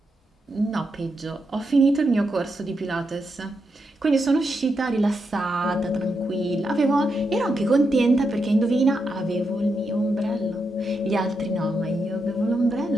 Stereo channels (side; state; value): both; normal; correlation 0.84